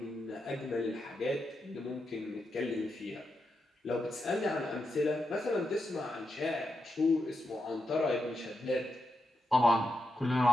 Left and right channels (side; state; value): both; normal; correlation 0.85